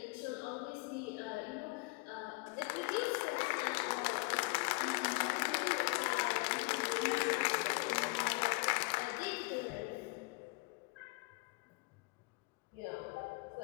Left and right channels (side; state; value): right; quieter; 27.0 dB